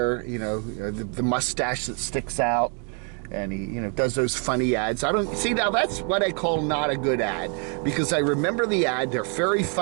You know, the mustache that sticks out, and he, you know, does those funny ads. I don't see, now that's what I call not a good ad, because I remember the ad. They're very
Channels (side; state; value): left; quieter; 39.8 dB